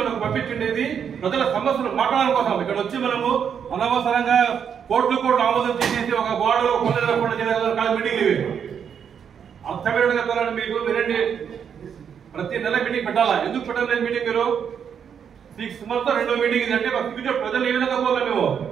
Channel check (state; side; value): quieter; left; 7.7 dB